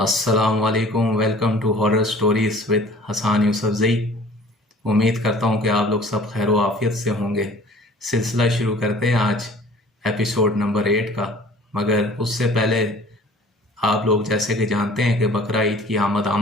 علیکم، welcome to horror stories with Hassan Yousafzai. امید کرتا ہوں کہ آپ لوگ سب خیر و عافیت سے ہوں گے۔ سلسلہ شروع کرتے ہیں آج ایپیسوڈ نمبر 8 کا، مگر اس سے پہلے آپ لوگ جیسے کہ جانتے ہیں کہ بقرہ عید کی آمد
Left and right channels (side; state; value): both; normal; correlation 0.49